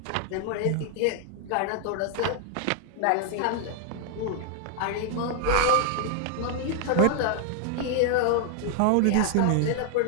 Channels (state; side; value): different; both; correlation 0.00